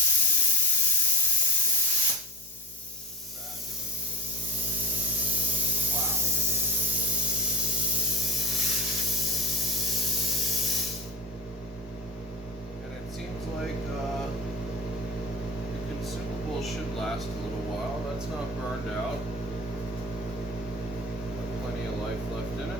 Seems like the consumable should last a little while. That's not burned out. Got plenty of life left in it.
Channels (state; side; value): normal; both; correlation 0.22